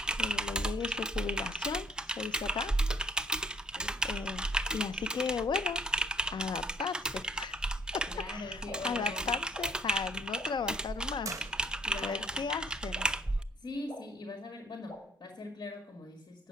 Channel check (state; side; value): normal; both; correlation 0.63